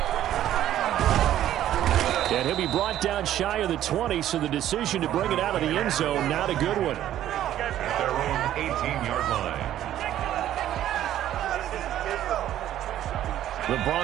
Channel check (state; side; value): quieter; left; 12.2 dB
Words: And he'll be brought down shy of the 20, so the decision to bring it out of the end zone, not a good one. At their own 18-yard line. The